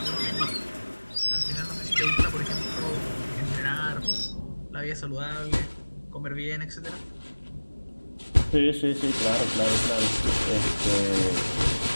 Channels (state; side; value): inverted; both; correlation -1.00